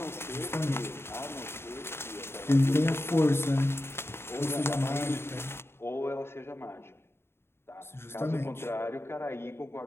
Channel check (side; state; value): right; late; 0.12 ms